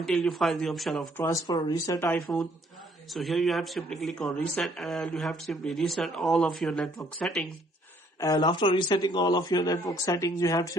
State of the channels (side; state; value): both; normal; correlation 0.64